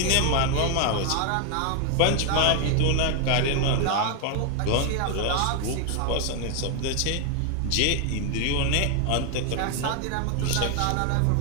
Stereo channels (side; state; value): both; different; correlation 0.01